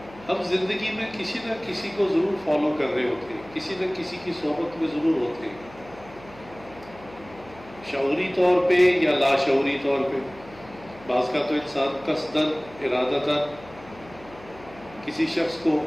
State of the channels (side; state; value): left; noise; hum, 21 dB below the sound